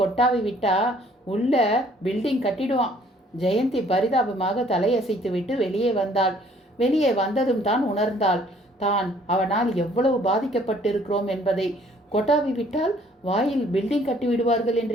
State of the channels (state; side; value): normal; both; correlation 0.60